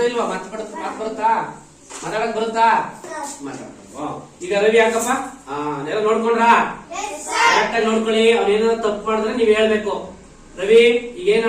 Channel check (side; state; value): both; identical; correlation 1.00